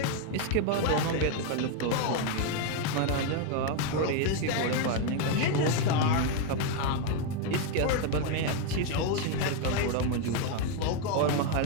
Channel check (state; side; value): different; both; correlation 0.01